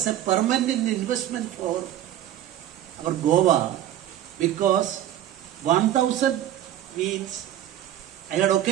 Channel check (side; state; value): left; quieter; 12.2 dB